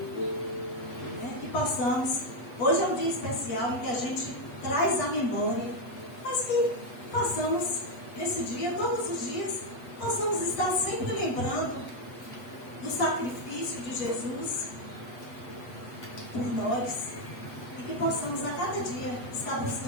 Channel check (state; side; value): late; right; 8.1 ms